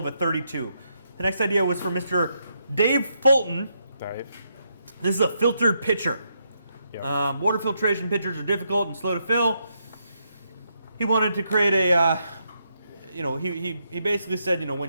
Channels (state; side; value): inverted; both; correlation -0.79